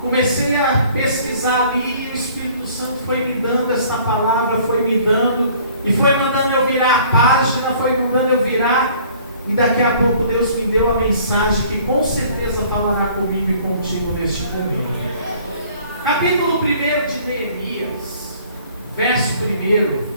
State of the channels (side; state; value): both; inverted; correlation -0.54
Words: comecei a pesquisar ali, e o Espírito Santo foi me dando essa palavra, foi me dando, e foi mandando eu virar a página, foi mandando eu virar, e daqui a pouco Deus me deu a mensagem que com certeza falará comigo e contigo neste domingo. Capítulo 1 de Neemias, verso 1,